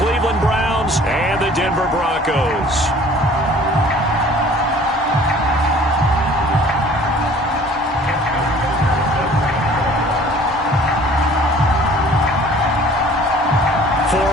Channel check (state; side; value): normal; both; correlation 0.51